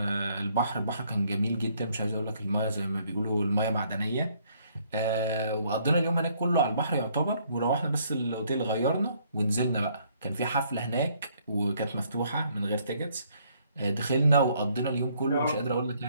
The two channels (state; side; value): inverted; both; correlation -0.66